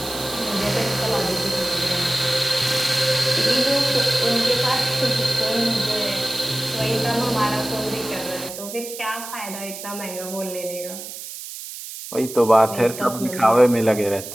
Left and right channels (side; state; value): right; noise; hiss, 11 dB below the sound